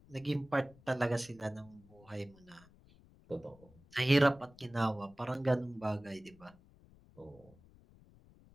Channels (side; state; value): left; noise; rumble, 25 dB below the sound